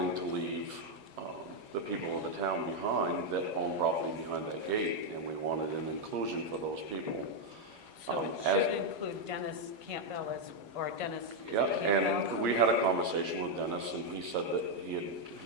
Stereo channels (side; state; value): left; late; 8.8 ms